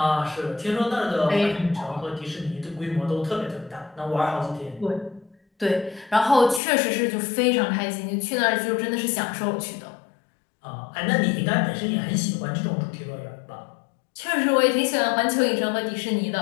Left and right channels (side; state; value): right; drops out; at 6.6 s